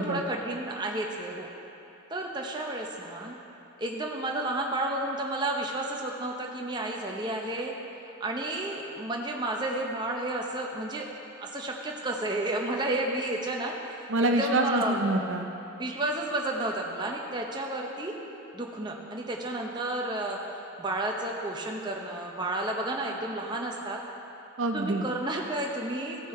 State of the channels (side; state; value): both; normal; correlation 0.22